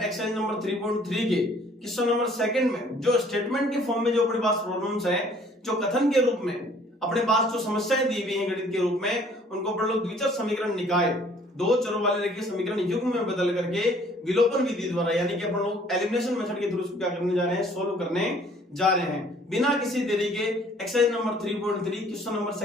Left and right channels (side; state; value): both; normal; correlation 0.57